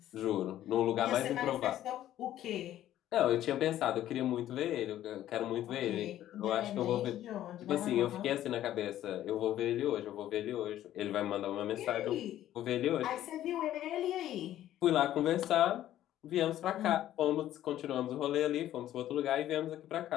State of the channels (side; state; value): right; quieter; 12.7 dB